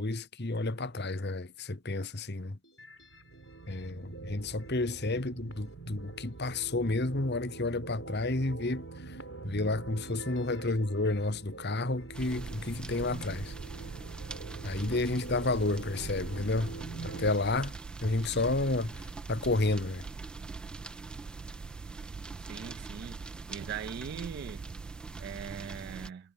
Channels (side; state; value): both; normal; correlation 0.40